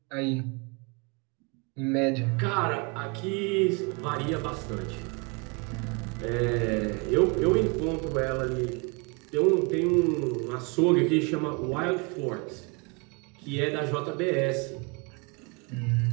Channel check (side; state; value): left; quieter; 30.7 dB